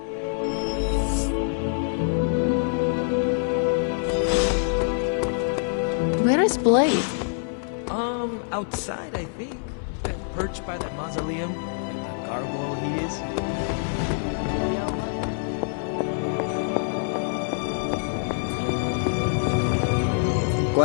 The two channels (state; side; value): silent; right; 60 dB below the other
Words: Where is Blade? Outside, I think. Perched by that mausoleum, like the gargoyle he is.